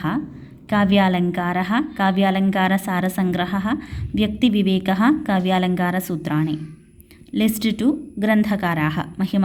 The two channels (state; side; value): identical; both; correlation 1.00